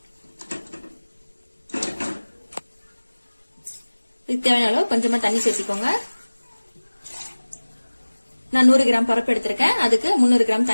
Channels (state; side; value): inverted; both; correlation -1.00